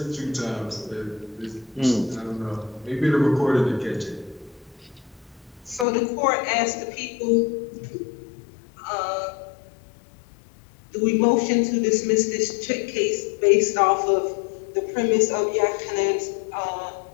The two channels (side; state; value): right; drops out; at 5.9 s